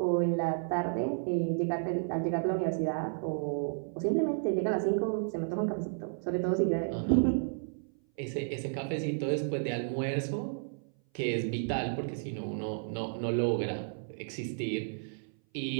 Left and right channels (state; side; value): silent; left; 56 dB below the other